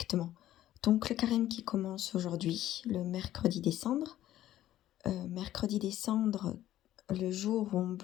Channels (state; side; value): quieter; right; 13.3 dB